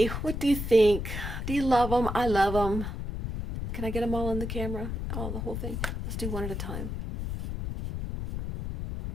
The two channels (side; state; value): left; noise; rumble, 5 dB below the sound